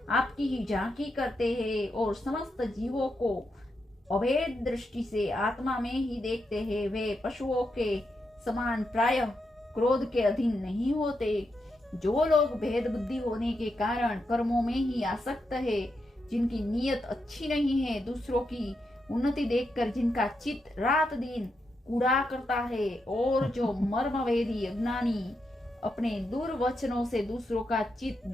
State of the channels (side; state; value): both; normal; correlation 0.84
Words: आपकी ही झांकी करते हैं और समस्त जीवों को अभेद दृष्टि से आत्मा में ही देखते हैं, वे पशुओं के समान प्रायः क्रोध के अधीन नहीं होते। जो लोग भेद बुद्धि होने के कारण कर्मों में ही आसक्त है, जिनकी नीयत अच्छी नहीं है, दूसरों की उन्नति देखकर जिनका चित्त रात दिन कूड़ा करता है, और जो मर्मवेदी अज्ञानी अपने दुर्वचनों से दूसरों का चित्त